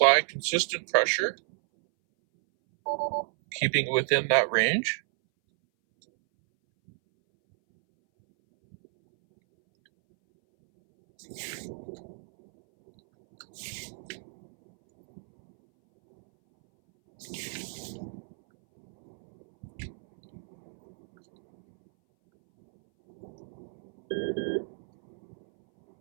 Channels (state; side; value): silent; left; 58 dB below the other